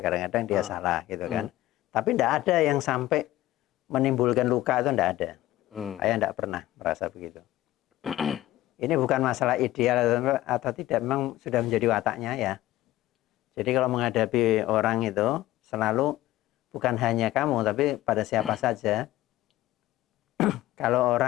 dia salah gitu kan. Tapi enggak ada yang sampai menimbulkan luka, itu enggak ada. Ayah enggak pernah merasa begitu. Ini bukan masalah ideal atau tidak, memang sudah menjadi wataknya ya. Jadi kalau menghadapi orang itu selalu bukan hanya kamu, tapi pada siapa saja. Kalau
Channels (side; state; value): right; quieter; 15.7 dB